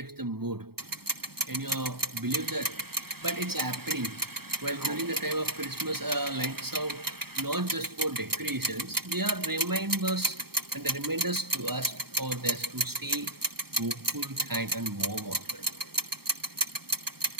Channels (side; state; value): left; late; 0.95 ms